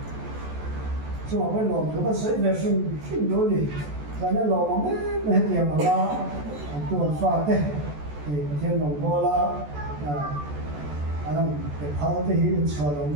chúng ta phải làm cho cái sự vệ sinh đối đi, và nếu làm mà mấy tiền mà la tuần pha thế thì thiên đồng bò la anh cái phao thế thì cho lòng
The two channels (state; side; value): late; left; 14 ms